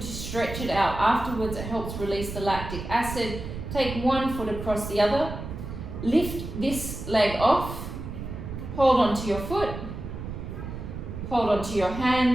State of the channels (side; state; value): right; noise; rumble, 8 dB below the sound